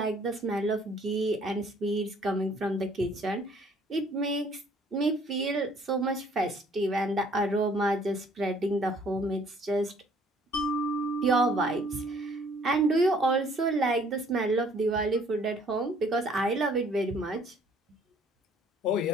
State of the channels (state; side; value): normal; both; correlation 0.59